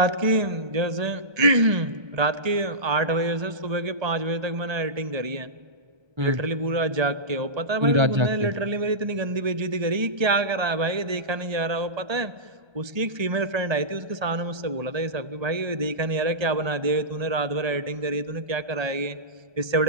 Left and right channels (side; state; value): left; late; 1.3 ms